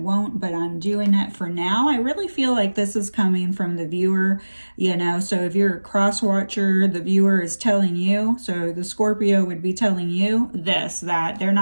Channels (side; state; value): both; inverted; correlation -1.00